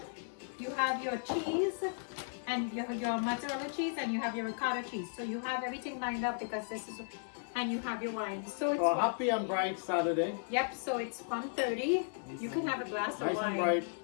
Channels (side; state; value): right; silent; digital silence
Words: You have your cheese and your mozzarella cheese, and you have your ricotta cheese. So you have everything lined up because this is... And you have your wine. So it's Happy and bright Saturday. Yep, so it's 1:30. You can have a glass of Nice wine and bright.